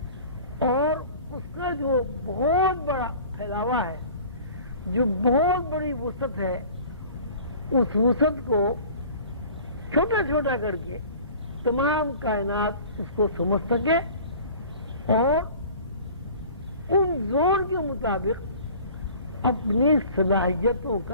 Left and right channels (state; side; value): inverted; both; correlation -0.45